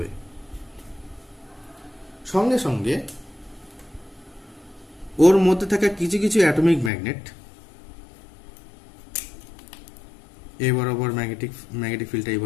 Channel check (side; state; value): right; drops out; at 6.9 s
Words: সঙ্গে সঙ্গে ওর মধ্যে থাকা কিছু কিছু অ্যাটমিক ম্যাগনেট এই বরাবর ম্যাগনেটিক ফিল্ডটা এই